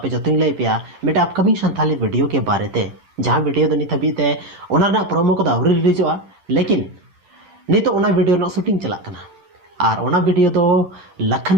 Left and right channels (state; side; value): late; left; 10 ms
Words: जो लई पे मेटा अपकमिंग संथाली वीडियो के बारे ते जहां वीडियो नित हबीते प्रोमो को आउरी रिलीजोआ लेकिन नित वीडियो ना शूटिंग चला कना और ओना वीडियो दो लखन